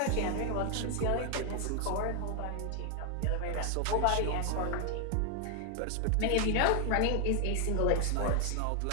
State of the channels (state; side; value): different; both; correlation 0.00